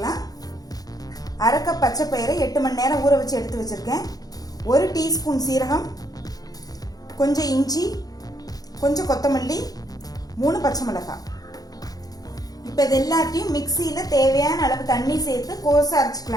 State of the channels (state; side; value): late; right; 0.18 ms